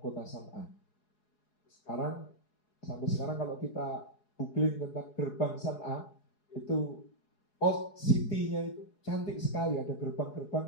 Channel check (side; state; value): right; late; 4.8 ms